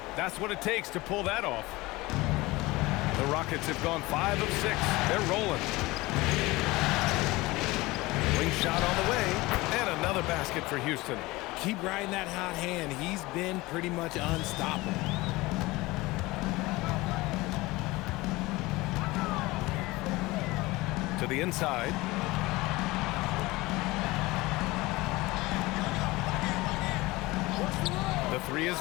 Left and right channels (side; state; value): right; quieter; 20.9 dB